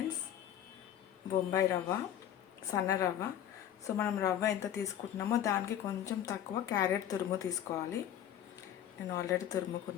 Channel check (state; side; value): quieter; right; 10.6 dB